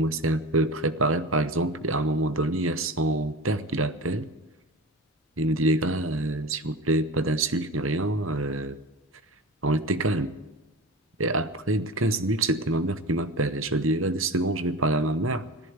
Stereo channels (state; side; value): normal; both; correlation 0.31